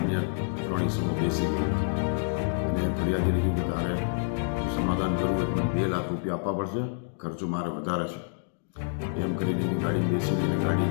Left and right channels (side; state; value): right; silent; digital silence